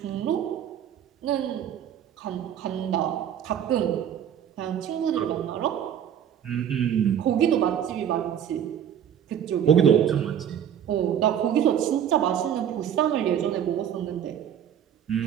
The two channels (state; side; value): quieter; left; 9.5 dB